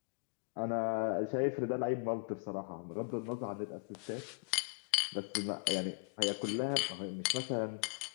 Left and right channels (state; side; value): quieter; right; 37.5 dB